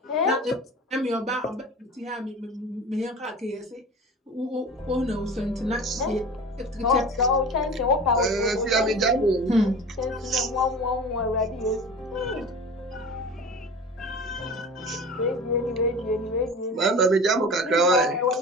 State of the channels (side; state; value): both; normal; correlation 0.35